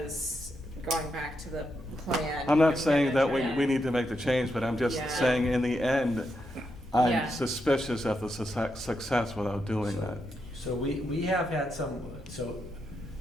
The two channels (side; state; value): both; normal; correlation 0.83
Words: going back to the plan. I'm not you're saying that gonna try- we need to make the change, but I'm just Yeah. saying in the end, I'm Yeah. suspicious of the success without doing that. So we have had some, so